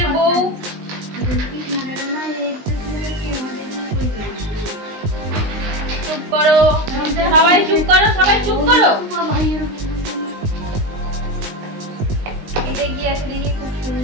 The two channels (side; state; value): left; late; 19 ms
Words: বউ। চুপ করো সবাই, চুপ করো সবাই, চুপ করো। এটা কি আছে দেখি, খুব